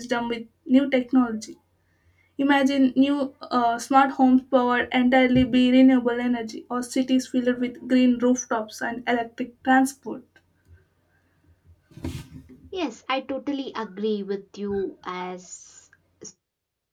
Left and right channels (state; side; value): identical; both; correlation 1.00